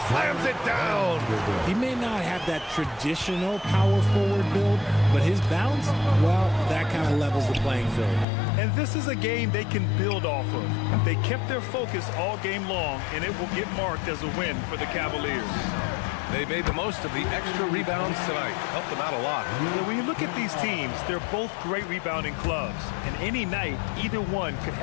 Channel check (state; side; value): drops out; right; at 8.2 s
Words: slams it down. He may not have that traditional power forward build, but his bounce, well, that kind of levels the playing field. And this is a game they can build off of. They kept their focus all game long, and it will get marked as a win for the Cavaliers. They made the most of the extra rebounds tonight. Helped them out a lot. Yeah, when you look at these teams, they're both great rebounding clubs. And any night, either one could